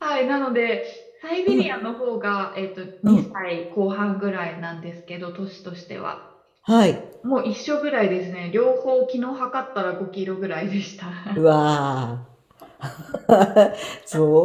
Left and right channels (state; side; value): identical; both; correlation 1.00